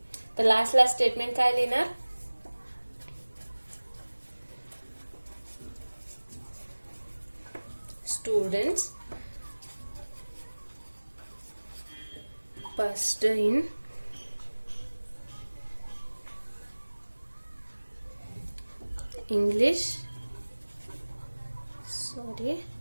तर लास्ट स्टेटमेंट काय लिहिणार? Students passed in English,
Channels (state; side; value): inverted; both; correlation -1.00